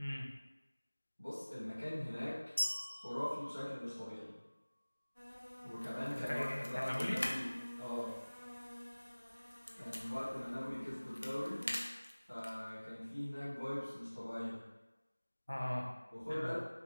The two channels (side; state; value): both; inverted; correlation -1.00